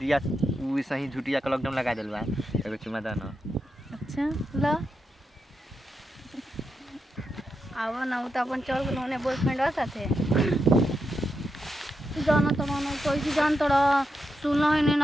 वो सही झूठिया का लॉकडाउन लगा दिल बा। एगो चुमा दो ना। अच्छा लो आवा ना तो अपन चल गए होने बॉयफ्रेंड साथे जाना तो मानो कैसे जान तोड़ा सुना है नहीं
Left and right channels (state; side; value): normal; both; correlation 0.86